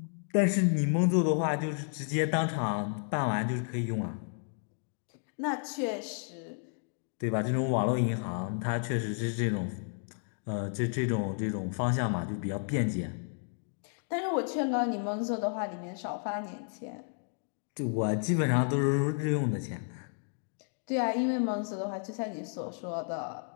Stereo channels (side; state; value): right; silent; 56 dB below the other